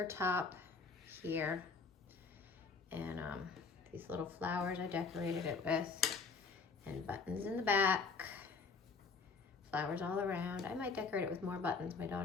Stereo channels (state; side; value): quieter; right; 4.8 dB